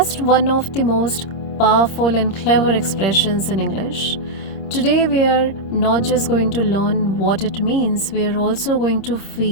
one of the most powerful and clever expressions in English. Today, we are not just going to learn what it means, we are also going to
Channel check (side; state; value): right; late; 26 ms